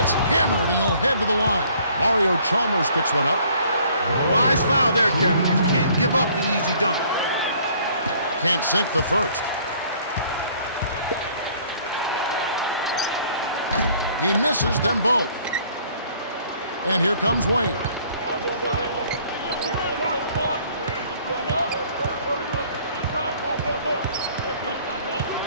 hammered and he'll head to the line. Mario Chalmers picks one up. Wise foul there, Kevin. You can't give up the easy dunk. Can't sink the first. He misses them both. And here comes Wayne.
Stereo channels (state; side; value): inverted; both; correlation -0.58